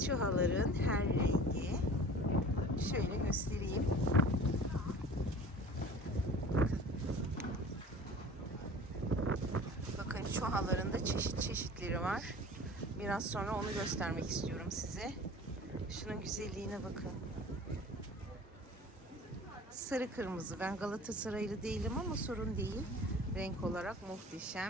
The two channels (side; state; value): both; normal; correlation 0.43